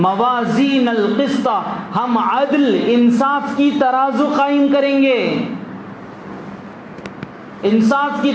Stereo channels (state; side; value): identical; both; correlation 1.00